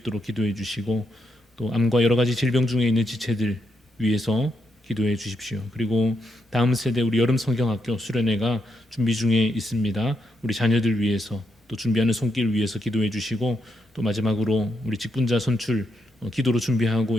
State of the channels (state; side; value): normal; both; correlation 0.81